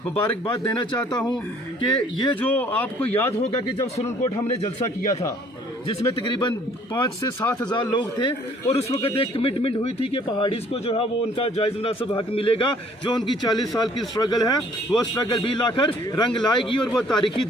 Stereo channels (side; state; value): both; normal; correlation 0.59